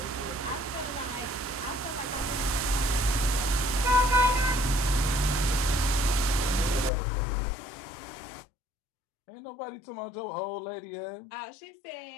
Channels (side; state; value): right; drops out; at 6.9 s